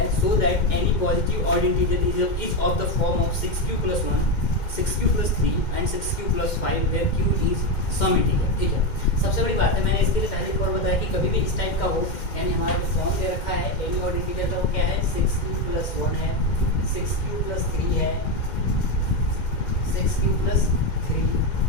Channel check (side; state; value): right; late; 2.1 ms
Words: so that any positive odd integer is of the form of 6q + 1 6q + 3 and 6q + 5 where q is some integer, ठीक है। सबसे बड़ी बात है, मैंने इसके लिए पहले एक और बताया कि कभी भी इस टाइप का हो, यानी हमारा जो फॉर्म दे रखा है एनी ऑड इंटीजर का, वो क्या है 6q + 1 है, 6q + 3 है, 6q + 3